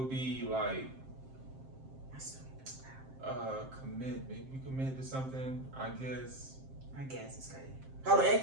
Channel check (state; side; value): late; left; 7.6 ms